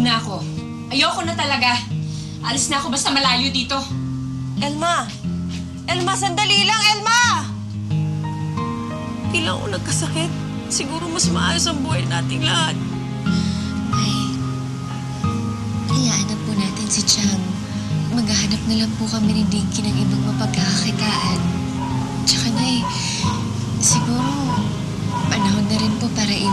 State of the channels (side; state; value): both; identical; correlation 1.00